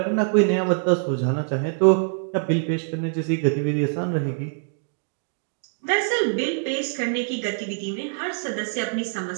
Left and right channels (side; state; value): left; silent; digital silence